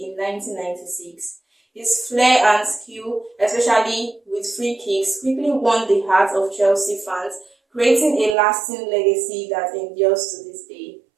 in 1996. His flair and skill, especially with free kicks, quickly won the hearts of Chelsea fans, creating a lasting legacy that endures to this day.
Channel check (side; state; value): left; drops out; at 8.3 s